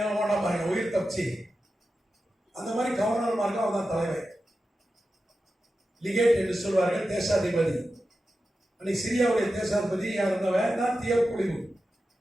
ஓடா பாருங்க, உயிர் தப்பிச்சு. அந்த மாதிரி கவர்னர் மார்க்க அவன் தான் தலைவர். லிகேட் என்று சொல்வார்கள், தேசாதிபதி. அன்னைக்கு சிரியாவுடைய தேசாதிபதி யார் இருந்தவன் தான் தீய பொழிவு.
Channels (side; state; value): both; normal; correlation 0.92